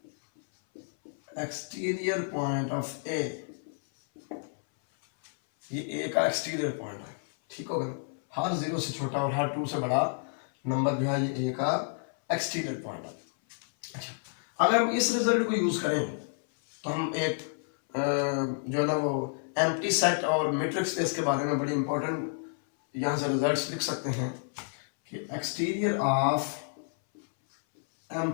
exterior point of A. ये ए का एक्सटीरियर पॉइंट है, ठीक होगा। हर 0 से छोटा और हर 2 से बड़ा नंबर जो है ये ए का एक्सटीरियर पॉइंट है। अच्छा, अगर हम इस रिजल्ट को यूज करें तो हम एक जो है ना वो एम्प्टी सेट और मैट्रिक्स स्पेस के बारे में बड़ी इंपॉर्टेंट यहाँ से रिजल्ट्स लिख सकते हैं कि exterior of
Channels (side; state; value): right; silent; 58 dB below the other